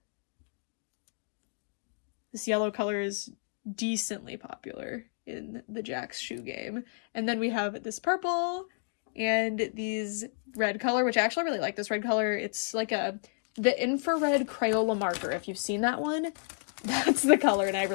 This yellow color is decently popular in the Jax shoe game. And then we have this purple and these red color, which I actually really like this red color. It's like the infrared Crayola marker. If you've seen that one, that's the color, and I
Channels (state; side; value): silent; right; digital silence